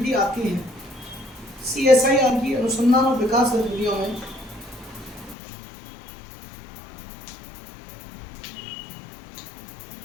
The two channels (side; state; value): right; drops out; at 5.4 s